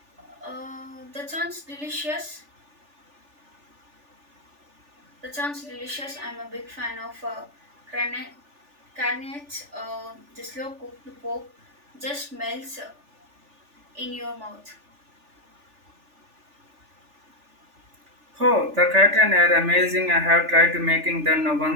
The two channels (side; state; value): left; late; 3.4 ms